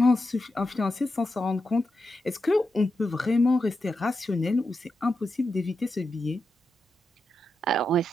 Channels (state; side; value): normal; both; correlation 0.87